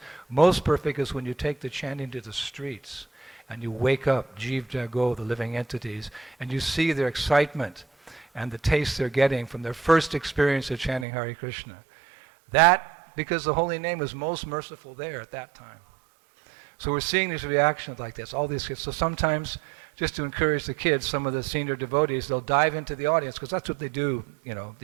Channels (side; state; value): left; drops out; at 11.1 s